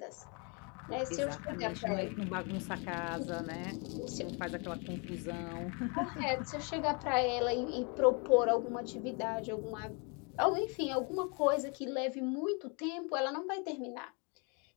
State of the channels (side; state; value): right; quieter; 33.7 dB